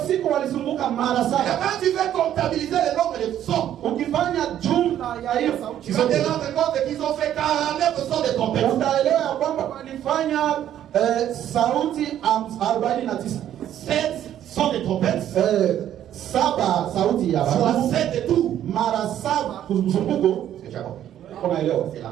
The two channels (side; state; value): left; quieter; 11.1 dB